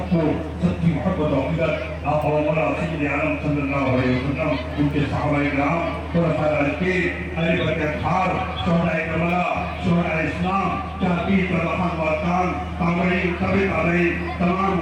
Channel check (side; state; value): both; identical; correlation 1.00